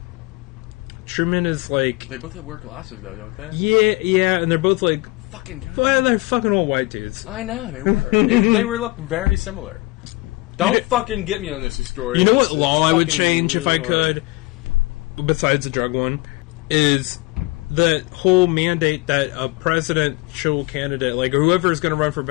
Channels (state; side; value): quieter; right; 22.3 dB